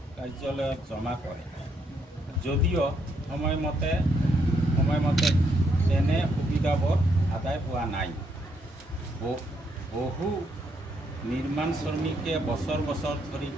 কাৰ্যালয়ত জমা কৰে যদিও সময়মতে তেনে সুবিধাবোৰ আদায় হোৱা নাই। বহু নিৰ্মাণ শ্ৰমিকে বছৰ ধৰি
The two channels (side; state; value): both; normal; correlation 0.75